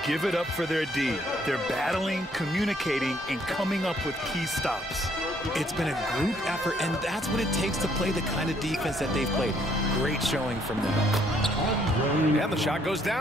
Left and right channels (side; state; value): both; normal; correlation 0.67